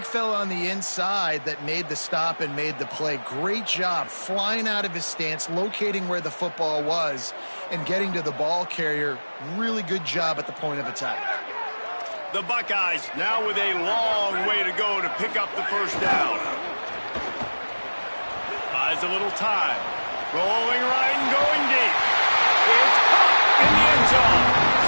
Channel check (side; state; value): both; inverted; correlation -1.00